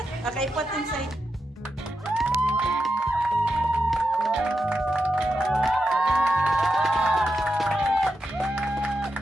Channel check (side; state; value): both; normal; correlation 0.87